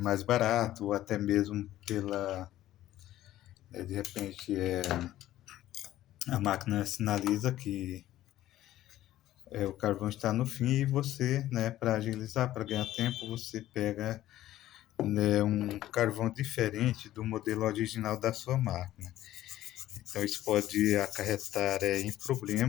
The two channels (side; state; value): right; quieter; 14.1 dB